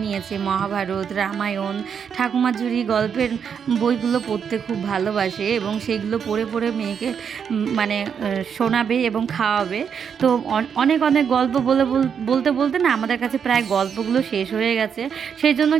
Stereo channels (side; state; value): left; quieter; 7.2 dB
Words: নিয়েছে মহাভারত, রামায়ণ, ঠাকুমার ঝুড়ি গল্পের বইগুলো পড়তে খুব ভালোবাসে এবং সেইগুলো পড়ে পড়ে মেয়েকে মানে শোনাবে এবং খাওয়াবে। তো অনেক গল্প বলতে বলতে না আমাদের কাছে প্রায় গল্পগুলো শেষ হয়ে গেছে, সেই জন্য